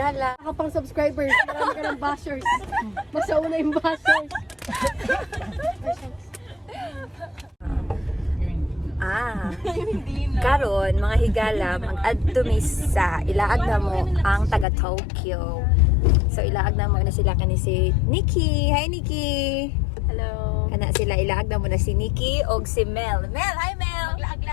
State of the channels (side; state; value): right; drops out; at 14.7 s